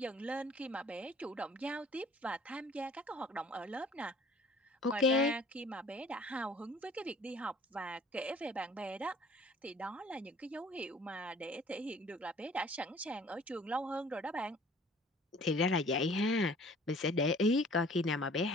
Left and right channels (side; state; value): both; normal; correlation 0.52